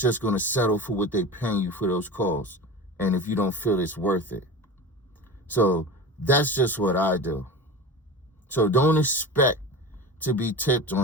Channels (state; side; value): normal; both; correlation 0.30